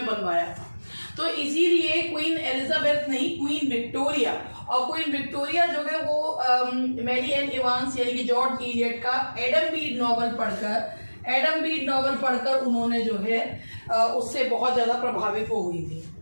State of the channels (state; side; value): inverted; both; correlation -1.00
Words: बनवाया था। तो इसीलिए क्वीन एलिजाबेथ नहीं, क्वीन विक्टोरिया, और क्वीन विक्टोरिया जो है वो मैरियन इवांस यानी कि जॉर्ज इलियट का एडम बीड नॉवल पढ़कर उन्होंने जो है उससे बहुत ज्यादा प्रभावित हो हुई थी।